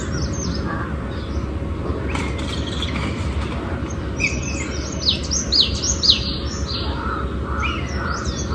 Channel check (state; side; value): identical; both; correlation 1.00